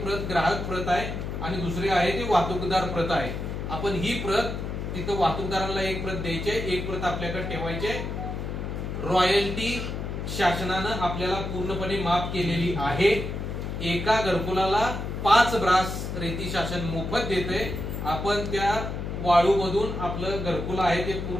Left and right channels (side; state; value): left; noise; hum, 5 dB below the sound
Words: प्रत ग्राहक प्रत आहे आणि दुसरी आहे ती वाहतूकदार प्रत आहे. आपण ही प्रत तिथं वाहतूकदारांना एक प्रत द्यायची, एक प्रत आपल्याकडे ठेवायची. रॉयल्टी शासनानं आपल्याला पूर्णपणे माफ केलेली आहे. एका घरकुलाला 5 ब्रास रेती शासन मोफत देते. आपण त्या वाळूमधून आपलं घरकुल आहे ते